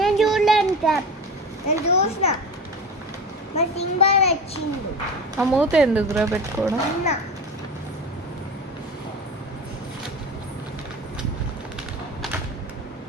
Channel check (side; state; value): both; normal; correlation 0.30